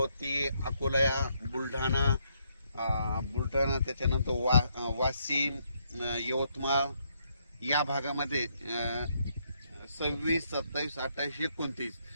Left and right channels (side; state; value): both; inverted; correlation -0.74